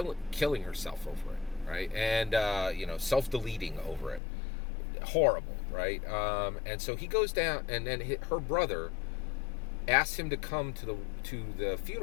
herself over it, right? And self-deleting over it. Horrible, right? And so he goes down, and then her brother asks him to come to the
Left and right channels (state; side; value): drops out; right; at 4.2 s